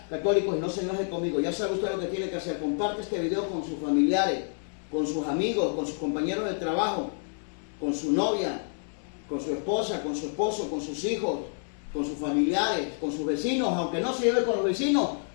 católicos, y no se enoje conmigo. Ya sabe usted lo que tiene que hacer. Comparte este video con sus familiares, con sus amigos, con sus compañeros de trabajo, con su novia, con su esposa, con su esposo, con sus hijos, con sus familiares, con sus vecinos. Aunque no se lleve con los vecinos,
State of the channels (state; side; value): silent; right; digital silence